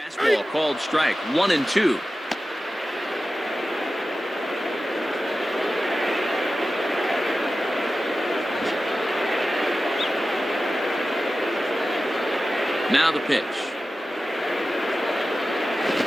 called strike, 1-2. Now the pitch.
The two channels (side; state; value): both; normal; correlation 0.94